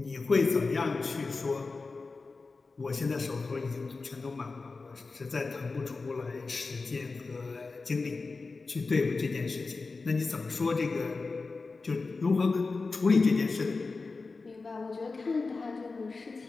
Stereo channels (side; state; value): right; quieter; 4.0 dB